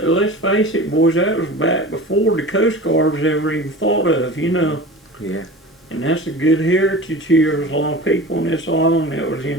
let's face it, boys, that was back before the Coast Guard was ever even thought of, you know. Yeah. And that's a good heritage here. There's a lot of people in this island that was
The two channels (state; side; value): normal; both; correlation 0.35